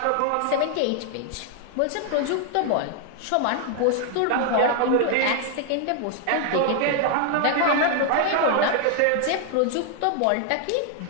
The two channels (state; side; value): different; both; correlation 0.00